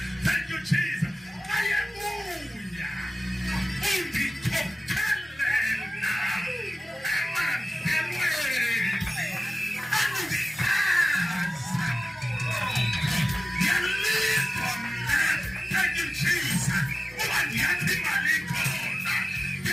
Thank you Jesus. Hallelujah. Undikhokelela emandelweni aluhlaza. Yalipha mna. Thank you Jesus. Uba ndiyathi imali ikhona.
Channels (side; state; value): both; normal; correlation 0.96